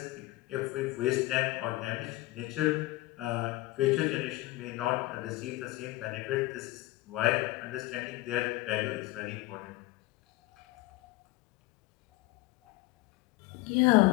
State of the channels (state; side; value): quieter; right; 19.6 dB